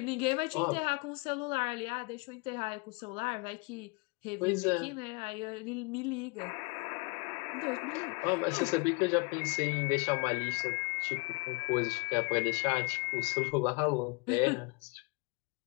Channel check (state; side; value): quieter; right; 30.0 dB